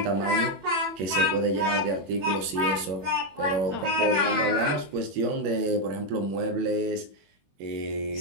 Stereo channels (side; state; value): left; late; 21 ms